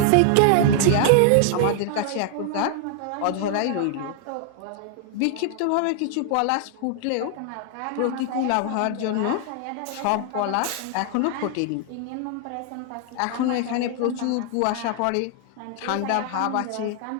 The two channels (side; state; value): both; different; correlation 0.00